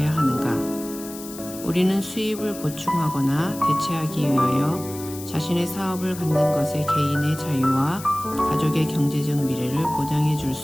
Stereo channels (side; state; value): left; noise; hiss, 14 dB below the sound